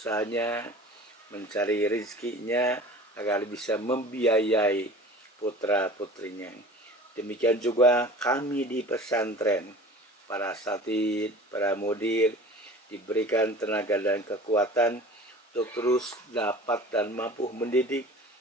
mencari rezekinya agar bisa membiayai putra-putrinya. Demikian juga kami di pesantren, para asatid, para mudir, diberikan tenaga dan kekuatan untuk terus dapat dan mampu mendidik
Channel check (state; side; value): normal; both; correlation 0.41